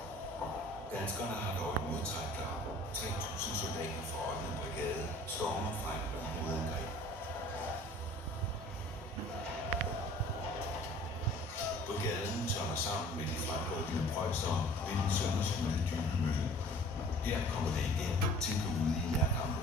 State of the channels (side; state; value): both; normal; correlation 0.49